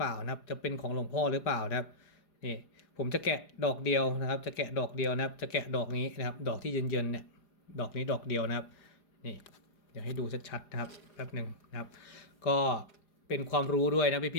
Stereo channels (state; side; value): late; right; 4.9 ms